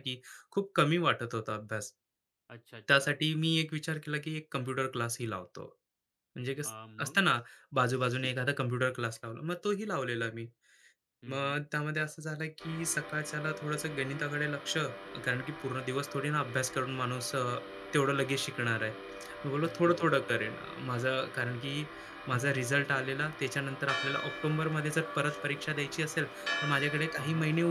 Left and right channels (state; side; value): identical; both; correlation 1.00